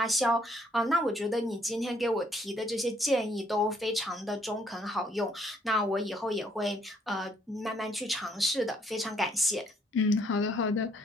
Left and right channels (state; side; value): normal; both; correlation 0.67